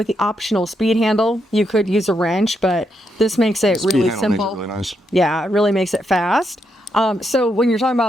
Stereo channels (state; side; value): normal; both; correlation 0.80